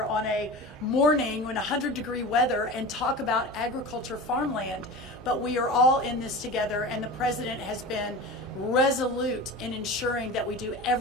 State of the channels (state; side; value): normal; both; correlation 0.31